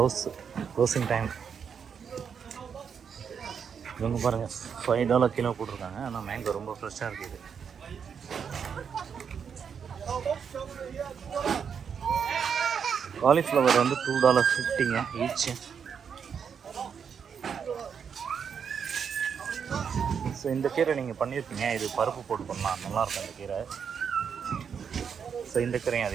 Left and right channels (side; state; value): left; quieter; 7.0 dB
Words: closing time. இவங்க பாருங்கள் $5 கிலோ போட்டிருக்காங்க, ஆனால் மேங்கோ ரொம்ப ஃப்ரெஷ்ஷாக இருக்குது. காலிஃப்ளவர் வந்து $2.50 ஈச். ஸோ இந்த கீரை நீங்கள் பண்ணியிருப்பீங்க, இது பருப்பு போட்டு பண்ணலாம், நல்லாயிருக்கும் இந்த கீரை. ஸோ இந்த கீரையும்